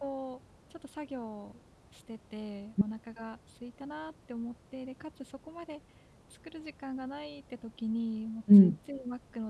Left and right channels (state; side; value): identical; both; correlation 1.00